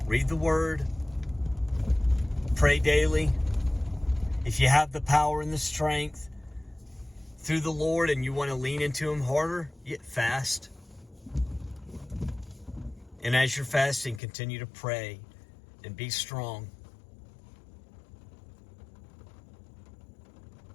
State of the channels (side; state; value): right; drops out; at 14.2 s